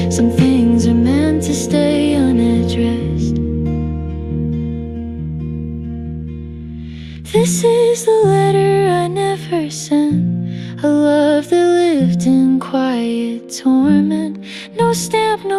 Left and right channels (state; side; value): identical; both; correlation 1.00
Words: Some things are meant to stay unaddressed. This is the letter I never sent, a love that lived in quiet torment. No stamp,